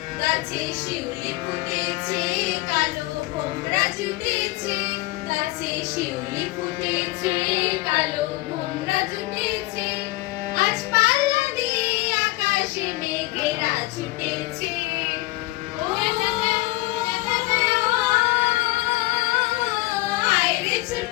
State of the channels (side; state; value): right; quieter; 20.2 dB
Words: গাছে শিউলি ফুটেছে, কালো ভোমরা জুটেছে। গাছে শিউলি ফুটেছে, কালো